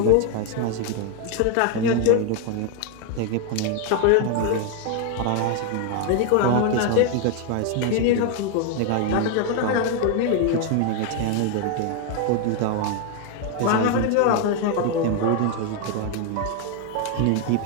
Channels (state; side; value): different; both; correlation 0.01